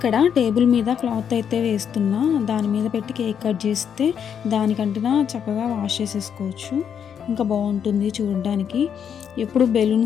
టేబుల్ మీద క్లాత్ అయితే వేస్తున్నా, దాని మీద పెట్టి కేక్ కట్ చేస్తే దానికంటే చక్కగా వాష్ చేసేసుకోవచ్చు. ఇంకా బాగుంటుంది చూడడానికి. ఎప్పుడు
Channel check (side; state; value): right; quieter; 8.0 dB